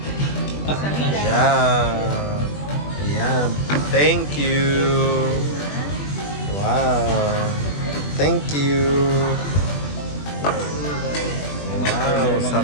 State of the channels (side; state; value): right; late; 20 ms